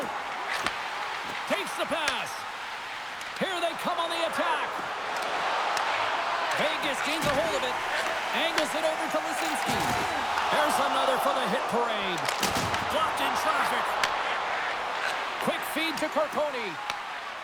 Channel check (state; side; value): identical; both; correlation 1.00